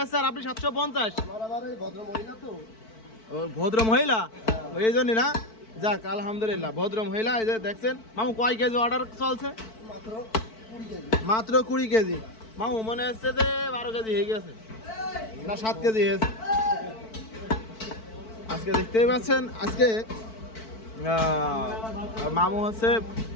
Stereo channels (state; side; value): late; right; 4.5 ms